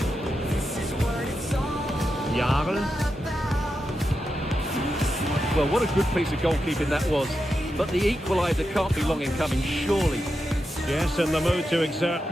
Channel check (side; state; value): both; normal; correlation 0.88